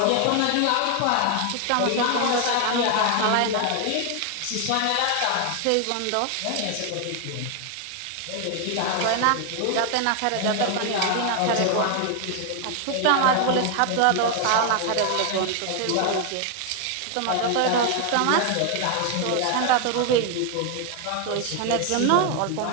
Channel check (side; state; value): both; different; correlation 0.01